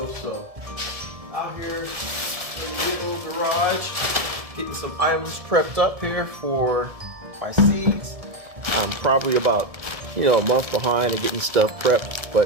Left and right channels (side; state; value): left; late; 1.7 ms